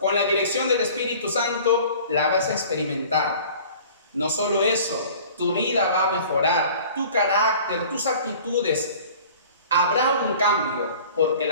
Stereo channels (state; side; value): inverted; both; correlation -0.46